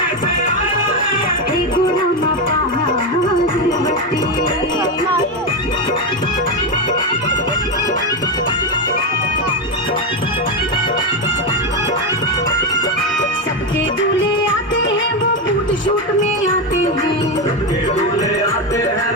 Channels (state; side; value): normal; both; correlation 0.11